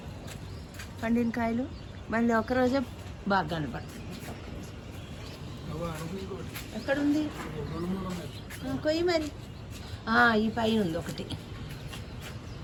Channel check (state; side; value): identical; both; correlation 1.00